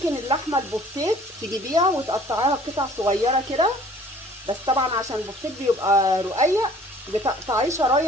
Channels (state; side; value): normal; both; correlation 0.53